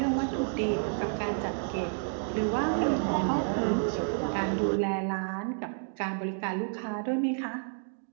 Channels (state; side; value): silent; left; digital silence